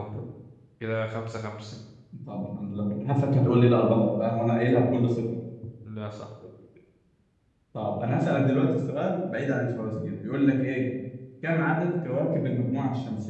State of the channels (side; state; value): both; identical; correlation 1.00